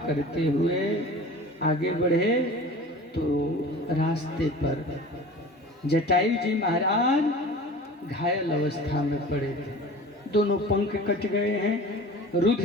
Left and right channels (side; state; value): both; normal; correlation 0.40